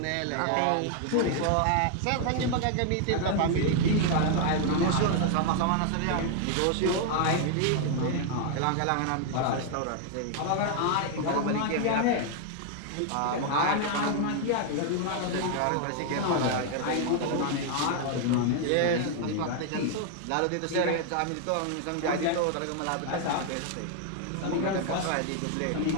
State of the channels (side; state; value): both; different; correlation 0.00